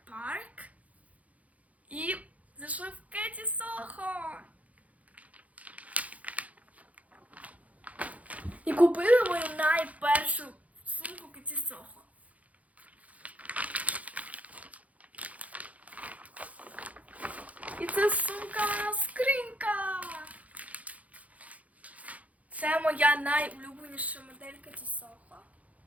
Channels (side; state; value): left; late; 0.069 ms